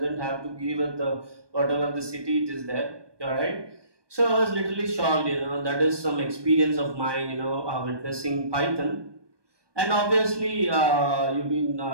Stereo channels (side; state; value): left; late; 1.2 ms